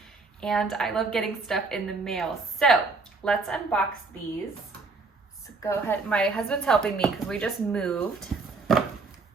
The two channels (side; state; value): left; quieter; 4.0 dB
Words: And I love getting stuff in the mail. So let's unbox these. So go ahead. My husband's helping me because we just moved.